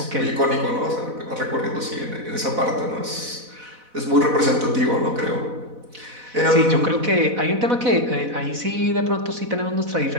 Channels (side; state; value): left; late; 4.1 ms